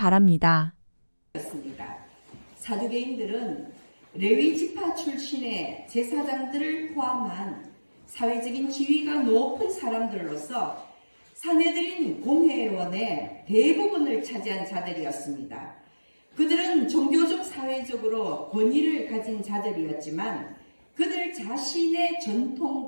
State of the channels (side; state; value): both; inverted; correlation -1.00